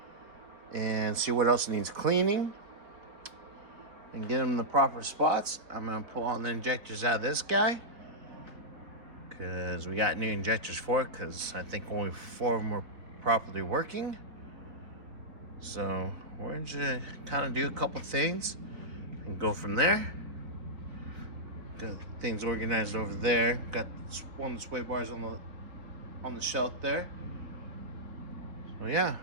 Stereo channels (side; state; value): left; late; 4.0 ms